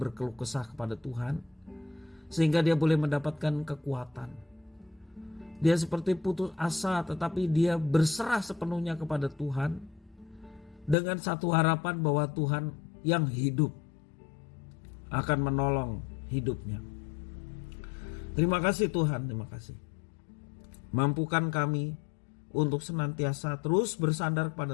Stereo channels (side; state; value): right; drops out; at 11.0 s